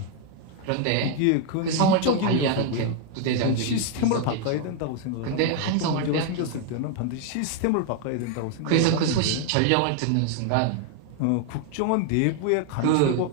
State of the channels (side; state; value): both; different; correlation 0.00